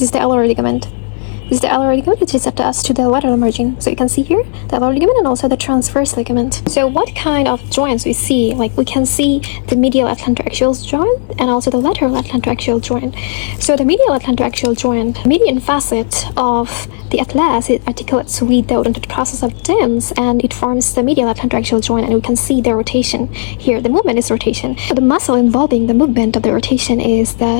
is the alar ligament. This is the alar ligament, which is attached to the lateral margin. So you can see here the alar ligament and also the transverse ligament. So what kind of joints we see? Like we can see the medial atlantoaxial joint and also the lateral atlantoaxial joint. So the medial atlantoaxial joint, median facet of the atlas, it articulates with the odontoid process of dens, and it forms the medial atlantoaxial joint, and we can see the rotation here. The movement is rotation. The muscle involving the movement of the rotation is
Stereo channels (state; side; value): silent; right; digital silence